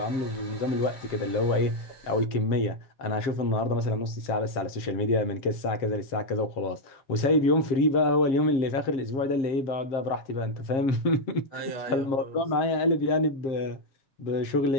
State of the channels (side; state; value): right; late; 7.5 ms